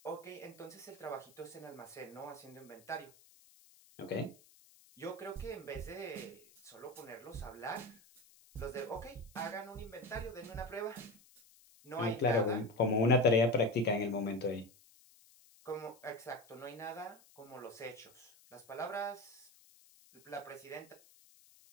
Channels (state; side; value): noise; left; hiss, 26 dB below the sound